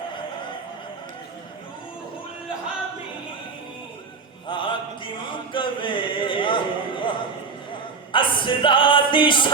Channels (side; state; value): left; quieter; 4.9 dB